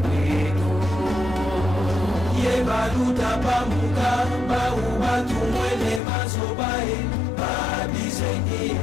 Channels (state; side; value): drops out; right; at 6.0 s